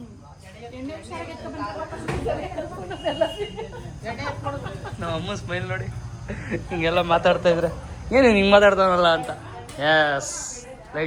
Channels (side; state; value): both; identical; correlation 1.00